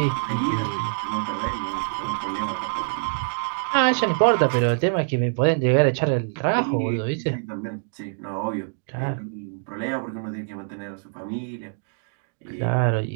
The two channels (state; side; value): silent; left; 62 dB below the other